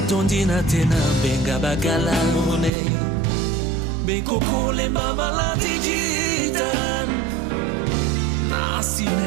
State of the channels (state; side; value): drops out; left; at 2.7 s